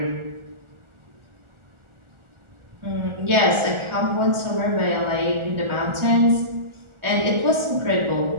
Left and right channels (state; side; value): late; left; 1.4 ms